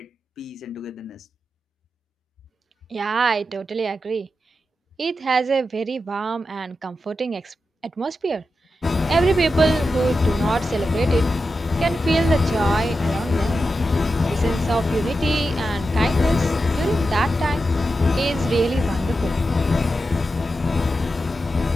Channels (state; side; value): normal; both; correlation 0.90